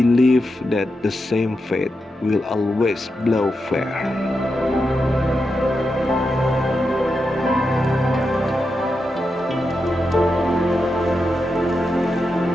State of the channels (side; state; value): both; normal; correlation 0.87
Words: that the same fate will always blow fair.